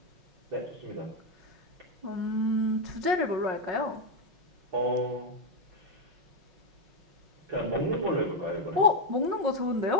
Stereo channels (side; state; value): left; late; 5.5 ms